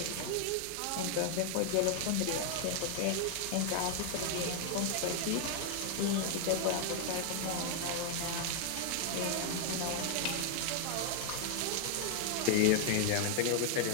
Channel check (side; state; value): both; different; correlation 0.00